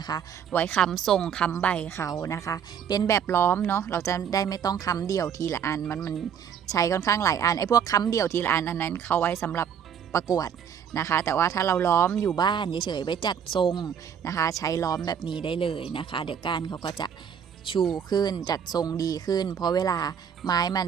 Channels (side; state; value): left; quieter; 8.0 dB